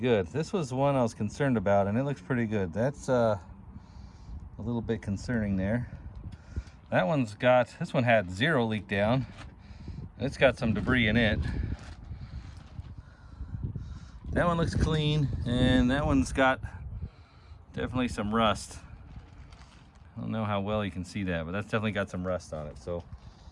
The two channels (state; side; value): identical; both; correlation 1.00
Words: This was the one I was concerned about, and it looks pretty good. That's a little bit concerning there. That one's got, this one had zero leak down. It's got some debris in it. That one looks clean, and that one's got definitely some rust. I don't know how well you can see that, but that's definitely got some rust on it. So